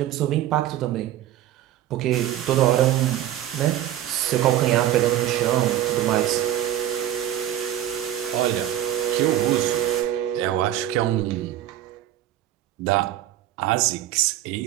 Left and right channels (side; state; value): left; quieter; 12.5 dB